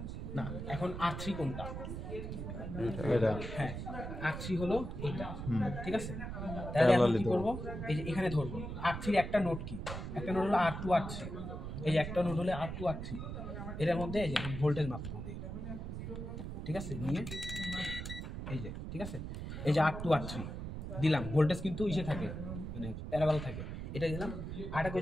না, এখন R3 কোনটা, এটা হ্যাঁ R3 হলো এটা, ঠিক আছে? তাহলে এখন কি করব, এই যে এখানে ধরবো R3 এর একটা নোড কি, একটা নোড হলো R2 R3, এই যে একটা নোড হলো R2 R3, এর মধ্যে এই যে ভোল্টেজ মাপবো আমি, ঠিক আছে? নিয়ে এই যে, ঠিক আছে, এই যে R2 R3 দিলাম, ভোল্টেজ কিন্তু ইসে থাকে, মানে প্যারালাল থাকে, এটা দিলাম। আরটা কই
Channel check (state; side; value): noise; right; rumble, 6 dB below the sound